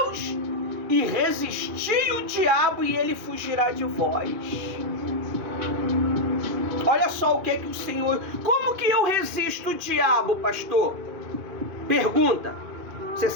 e resisti o diabo, e ele fugirá de vós. Olha só o que é que o Senhor... Como que eu resisto o diabo, pastor? Pergunta. Você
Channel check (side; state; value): left; late; 2.4 ms